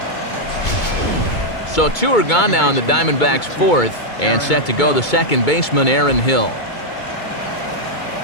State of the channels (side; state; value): right; late; 2.2 ms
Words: So 2 are gone now in the Diamondbacks' 4th, and set to go the second baseman, Aaron Hill.